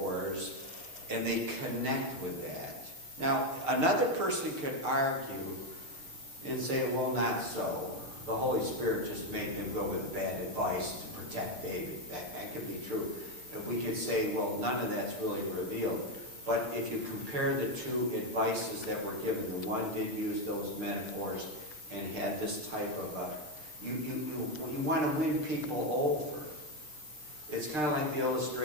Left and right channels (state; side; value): late; left; 6.7 ms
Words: and they connect with that. Now, another person could argue and say, well, not so. The Holy Spirit just made them go with the bad advice to protect David. That could be true. We could say, well, none of that's really revealed. But if you compare the two advices that were given, the one did use those metaphors and had this type of you want to win people over. It's kind of like the